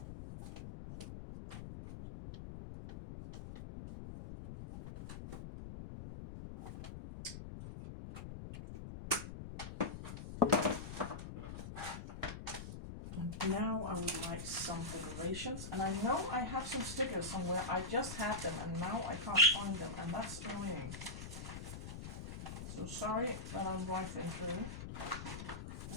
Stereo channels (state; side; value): noise; left; rumble, 8 dB below the sound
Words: And now I would like some decorations, and I know I have some stickers somewhere. I just had them and now I can't find them, and that's annoying. So sorry that I'm rifling through.